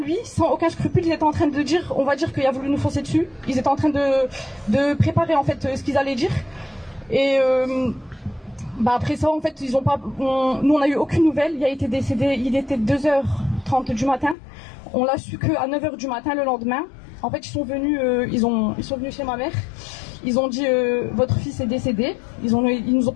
sans aucun scrupule, ils étaient en train de dire, on va dire qu'il a voulu nous foncer dessus. Ils étaient en train de préparer en fait ce qu'ils allaient dire. Et après ça, en fait, nous on a eu aucune nouvelle. Il a été décédé, il était 2h30 du matin. On l'a su qu'à 9h du matin le lendemain. En fait, ils sont venus chez ma mère. Ils ont dit votre fils est décédé. Ils nous ont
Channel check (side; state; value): right; drops out; at 14.4 s